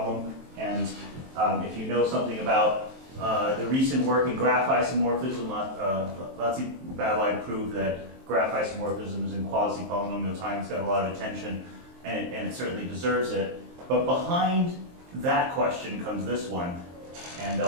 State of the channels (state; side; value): late; left; 23 ms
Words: And if you know something about the recent work in graph isomorphism, Latzi-Babelai proved that graph isomorphism is in quasi-polynomial time. It's got a lot of attention, and it certainly deserves it. But behind that question comes this one, and